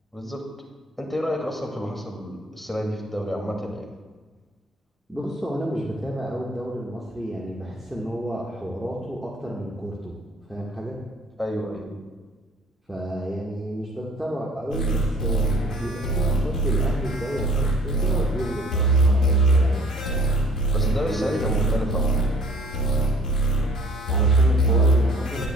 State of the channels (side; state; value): both; normal; correlation 0.53